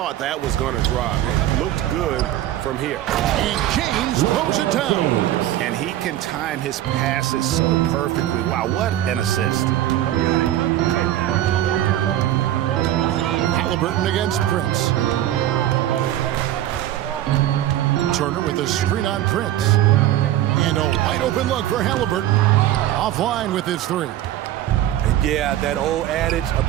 that was going to drop. It looked good from here. And James blows it down. And he can time his passes so perfectly. Wow, what an assist. Halliburton against Prince. Turner with a screen on Prince. And a wide open look for Halliburton. Offline with his three. And yeah, that old adage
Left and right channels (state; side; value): quieter; left; 13.0 dB